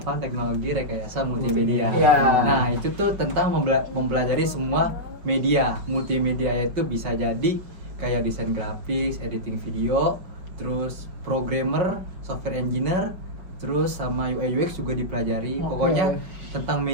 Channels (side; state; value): left; late; 5.4 ms